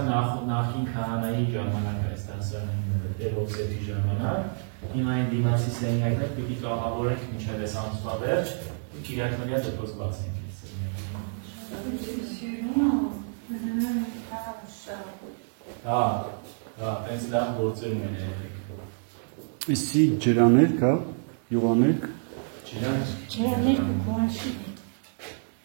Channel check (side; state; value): left; silent; digital silence